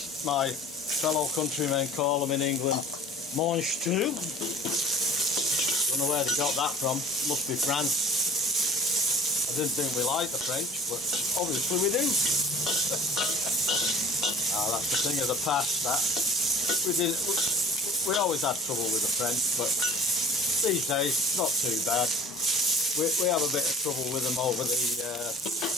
my fellow countrymen call them in England, mange tout. Don't know where they got that from. Must be France. I didn't think we liked the French, but obviously we do. That's the thing of the past. That we always had trouble with the French, but these days it's not too bad. We have a bit of trouble with them over the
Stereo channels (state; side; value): normal; both; correlation 0.45